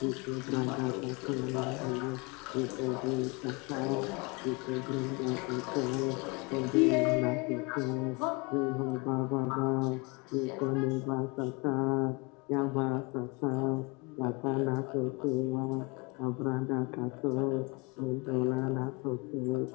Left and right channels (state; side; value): quieter; right; 28.6 dB